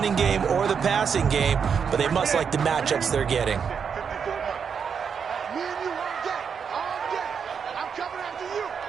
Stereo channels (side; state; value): left; quieter; 6.7 dB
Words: game or the passing game, but they must like the matchups they're getting.